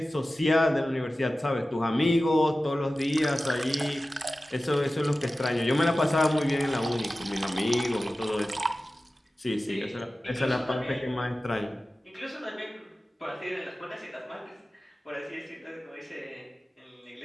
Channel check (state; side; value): normal; both; correlation 0.95